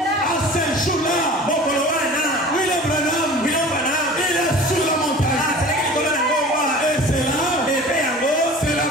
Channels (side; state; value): both; normal; correlation 0.41